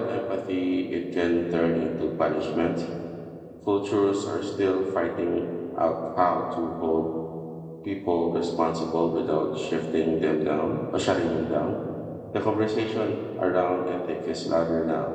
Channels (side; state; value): both; identical; correlation 1.00